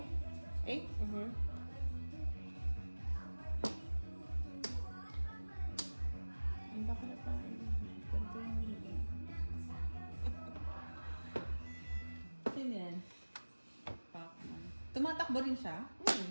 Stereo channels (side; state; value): both; inverted; correlation -1.00